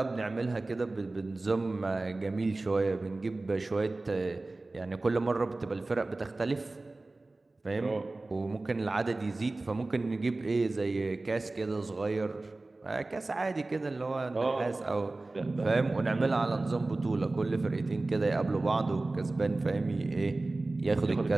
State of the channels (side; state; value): left; quieter; 3.1 dB